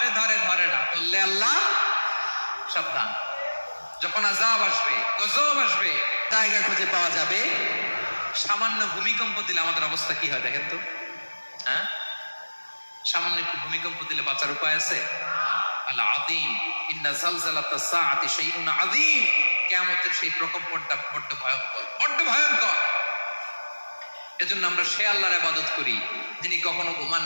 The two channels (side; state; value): both; inverted; correlation -1.00